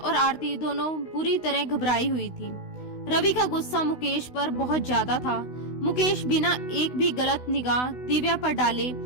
आरती दोनों बुरी तरह घबराई हुई थी। रवि का गुस्सा मुकेश पर बहुत ज्यादा था। मुकेश बिना एक भी गलत निगाह दिव्या पर डाले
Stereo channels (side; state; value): right; late; 16 ms